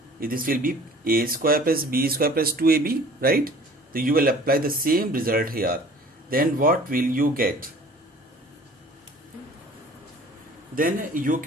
This will be A square plus B square plus 2AB, right? So you will apply the same result here. Then what will you get? Then you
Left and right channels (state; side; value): normal; both; correlation 0.48